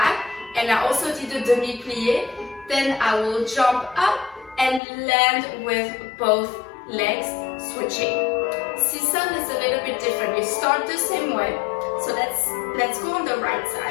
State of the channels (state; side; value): drops out; right; at 4.8 s